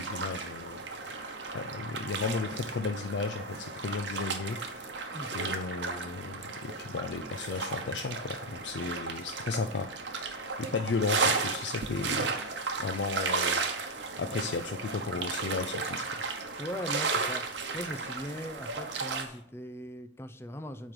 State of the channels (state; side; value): normal; both; correlation 0.06